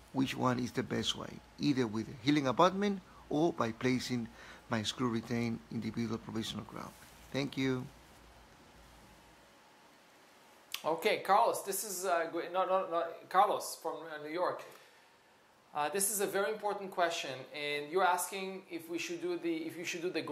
which one is the best way, either with a healing abutment or by placing my screw retained individual provisional crown. Thank you. Okay, Carlos, this is Carlos from New York. This is a very important question, and you're asking if you should do the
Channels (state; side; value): identical; both; correlation 1.00